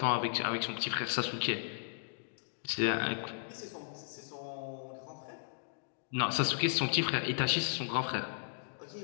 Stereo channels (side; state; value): right; silent; digital silence